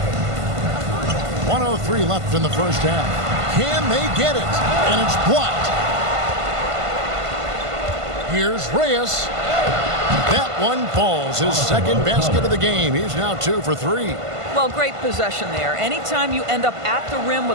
1:03 left in the first half. Can they get it? And it's blocked. Here's Reyes. That one falls. His second basket of the game. He's now 2 for 3. Well, great possession there. Anytime you end up at the rim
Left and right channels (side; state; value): left; late; 1.5 ms